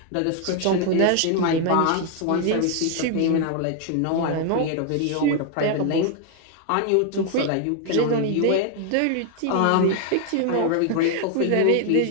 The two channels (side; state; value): both; different; correlation 0.00